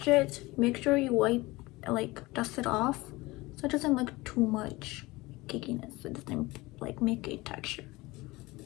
it. Make sure you wipe, like dust it off, so it doesn't look too much cakiness. It doesn't like make a texture.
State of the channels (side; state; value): right; quieter; 21.2 dB